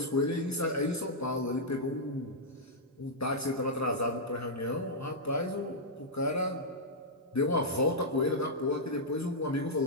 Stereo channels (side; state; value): both; normal; correlation -0.08